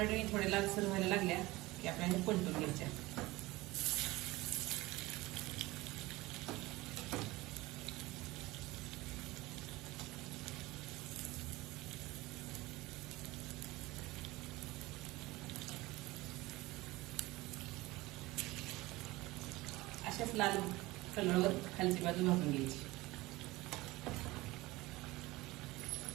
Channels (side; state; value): left; quieter; 20.1 dB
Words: थोडे लालसर व्हायला लागल्या की आपल्याला पलटून घ्यायच्या. अशाच लाल कलरवर खालची बाजू भाजून घ्यायची.